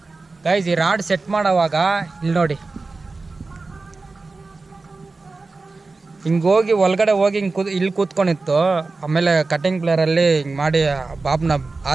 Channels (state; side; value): quieter; left; 3.7 dB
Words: ಗಾಯ್ಸ್, ಇಲ್ಲಿ ನೋಡಿ, ಹಿಂಗೆ ಹೋಗಿ ಒಳಗಡೆ ಹೋಗಿ ಇಲ್ಲಿ ಕೂತ್ಕೊಂಡಿತ್ತು. ಆಮೇಲೆ ಕಟಿಂಗ್ ಪ್ಲೇಯರಲ್ಲಿ ಹಿಂಗೆ ಮಾಡಿ ಬಾಬ್ನ